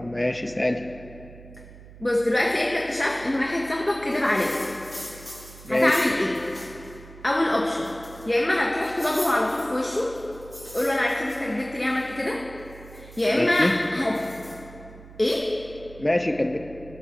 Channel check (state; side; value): noise; right; hum, 18 dB below the sound